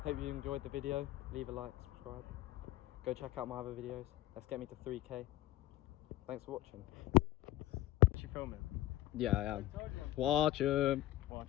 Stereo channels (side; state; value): right; quieter; 14.9 dB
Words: hope you enjoyed the video. Leave a like, subscribe. Go check out my other videos. Let's get me to 3K. Thanks for watching. Is she filming? Yeah, I am. Watch 'em. Watch